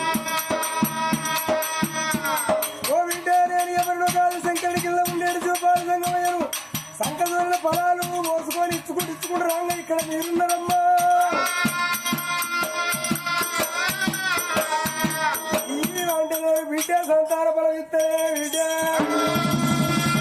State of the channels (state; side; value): identical; both; correlation 1.00